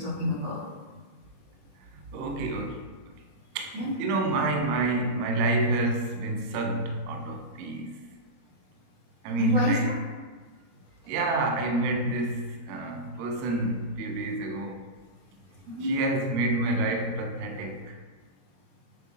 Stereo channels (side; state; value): left; late; 22 ms